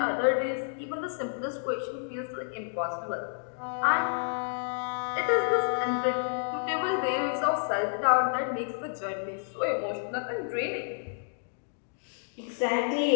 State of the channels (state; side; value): silent; right; digital silence